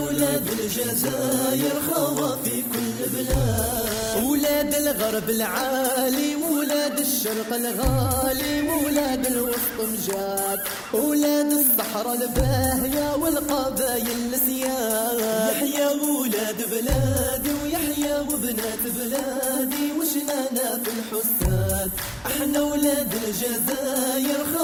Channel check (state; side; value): identical; both; correlation 1.00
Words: الجزاير، خوا في كل بلاد. ولاد الغرب العالي ولاد الشرق الغالي، ولاد الوسط مجاد، ولاد الصحراء الباهية والقبايل السياد. يحيا ولاد بلادي ويحيا وبنات بلادي، وشنانا في الحساد احنا ولاد الجزاير،